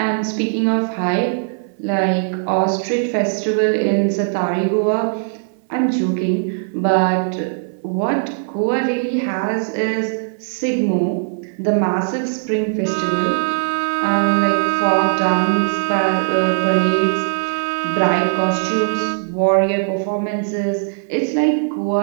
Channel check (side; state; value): left; silent; 60 dB below the other